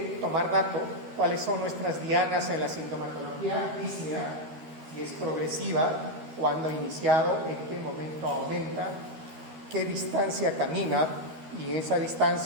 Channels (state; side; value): late; left; 13 ms